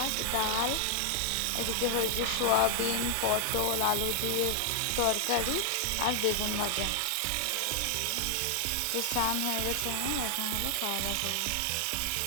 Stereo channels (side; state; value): both; different; correlation 0.00